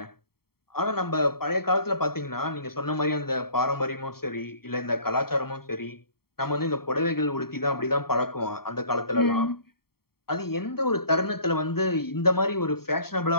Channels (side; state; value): right; late; 0.95 ms